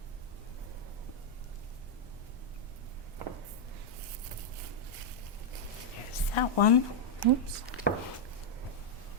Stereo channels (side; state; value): both; normal; correlation -0.02